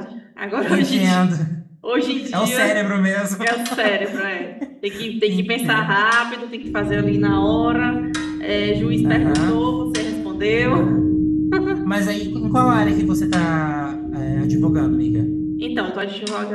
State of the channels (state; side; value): identical; both; correlation 1.00